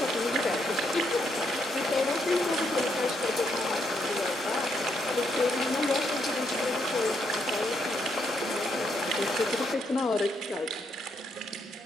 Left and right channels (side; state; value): both; normal; correlation 0.76